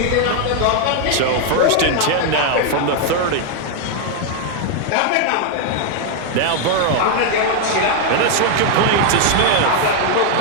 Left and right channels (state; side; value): different; both; correlation 0.00